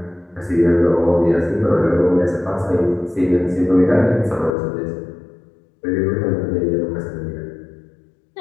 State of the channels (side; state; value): right; drops out; at 4.5 s